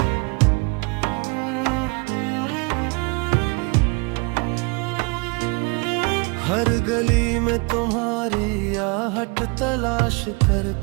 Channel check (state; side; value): quieter; left; 30.7 dB